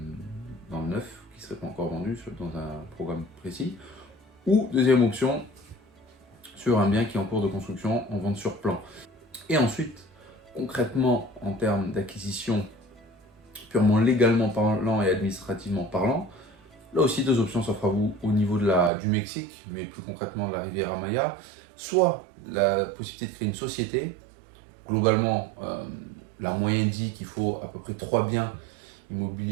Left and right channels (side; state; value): left; drops out; at 18.9 s